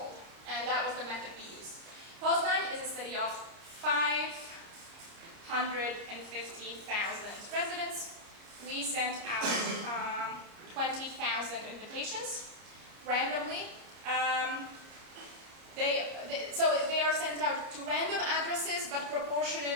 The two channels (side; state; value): left; late; 30 ms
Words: and that was the method we used. Poznan is a city of 550,000 residents. We sent out 20,000 invitations randomly. So they are sent out to random addresses, but